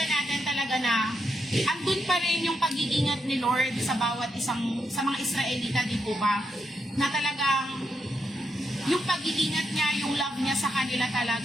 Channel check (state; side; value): normal; both; correlation 0.82